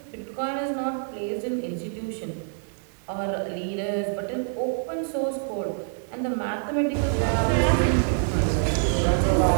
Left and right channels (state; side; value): silent; left; digital silence